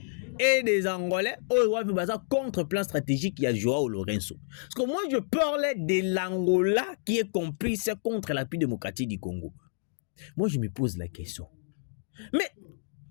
et des Angolais oyoyo baza contre plan stratégique il y a Joao Lourenço. Parce que moi je parlais de l'Angola qui est complice contre la République démocratique du Congo. Moi je me pose la question. Mais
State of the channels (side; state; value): right; silent; digital silence